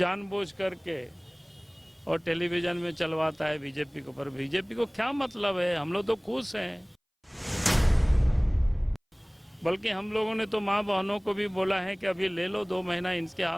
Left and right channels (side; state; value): both; identical; correlation 1.00